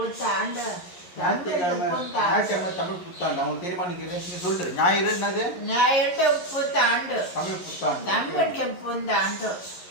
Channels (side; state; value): right; late; 11 ms